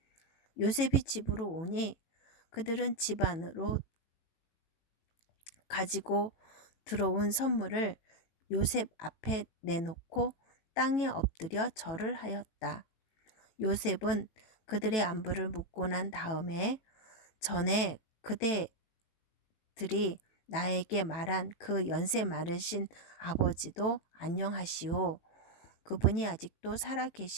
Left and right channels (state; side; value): late; right; 18 ms